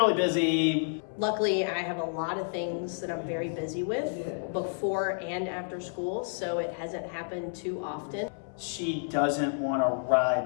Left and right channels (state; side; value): silent; right; 58 dB below the other